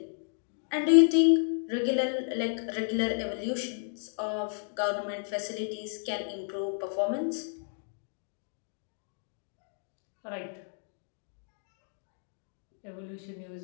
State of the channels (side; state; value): right; silent; digital silence